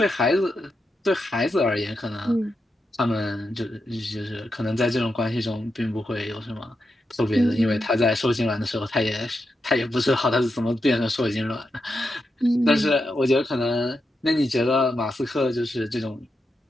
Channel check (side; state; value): both; normal; correlation 0.86